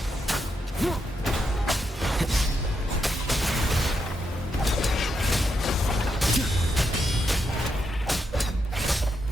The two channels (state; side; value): normal; both; correlation 0.82